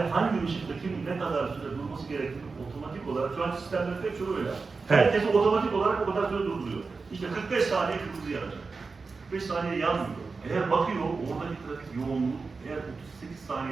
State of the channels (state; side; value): quieter; left; 4.4 dB